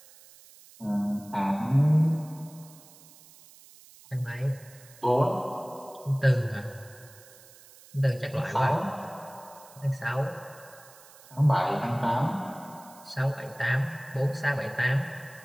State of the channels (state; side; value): noise; right; hiss, 23 dB below the sound